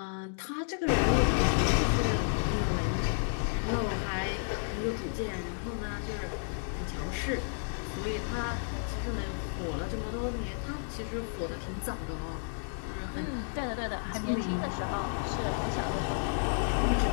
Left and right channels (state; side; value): silent; right; digital silence